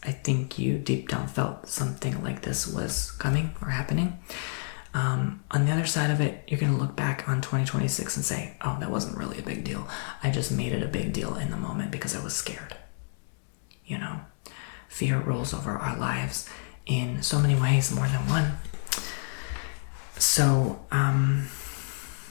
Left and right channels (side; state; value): right; silent; digital silence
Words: I think you deep down felt something like this was coming or happening. On the other side of it, you're going to look back on 2026 and say, oh, that wasn't really a big deal. I just made it a big deal in the moment because I was scared. You know, fear rules over our lives in so many ways, more than one. So,